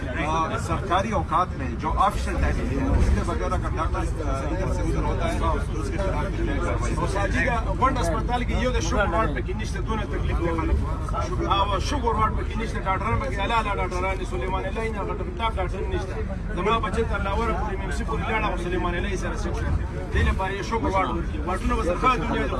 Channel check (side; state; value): both; identical; correlation 1.00